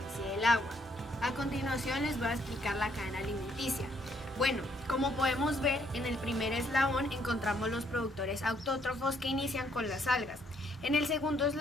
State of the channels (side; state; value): both; normal; correlation 0.69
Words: del agua. A continuación les voy a explicar la cadena alimenticia. Bueno, como podemos ver, en el primer eslabón encontramos los productores autótrofos que inician con las algas. En el segundo